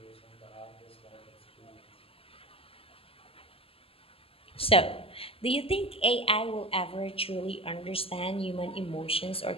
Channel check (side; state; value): right; late; 0.27 ms